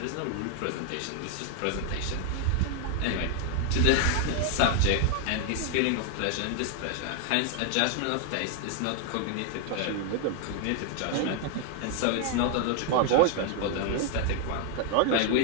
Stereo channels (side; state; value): both; different; correlation 0.00